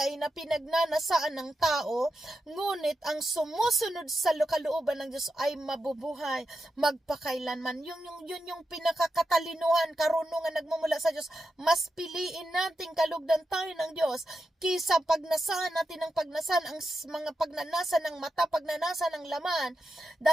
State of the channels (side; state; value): both; normal; correlation 0.87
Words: na pinagnanasaan ng tao, ngunit ang sumusunod sa kalooban ng Diyos ay mabubuhay magpakailanman. Yun yung pinakakatalinuhan, karunungan nagmumula sa Diyos. Mas piliin nating kalugdan tayo ng Diyos kisa pagnasahan natin ng pagnasan, ang mga pagnanasa ng mata, pagnanasa ng laman,